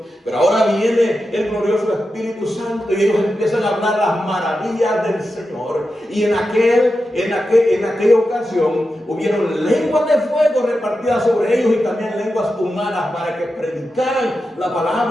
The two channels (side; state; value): both; normal; correlation 0.90